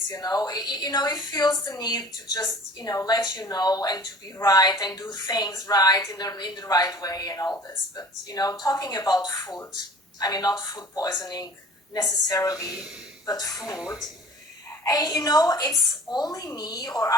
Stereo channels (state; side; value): normal; both; correlation 0.45